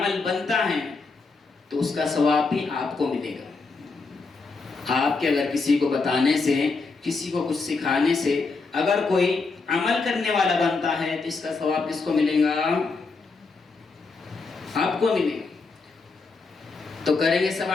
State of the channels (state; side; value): quieter; right; 4.1 dB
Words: بنتا ہے تو اس کا ثواب بھی آپ کو ملے گا. آپ کے اگر کسی کو بتانے سے، کسی کو کچھ سکھانے سے اگر کوئی عمل کرنے والا بنتا ہے تو اس کا ثواب کس کو ملے گا؟ آپ کو ملے گا. تو کریں گے سب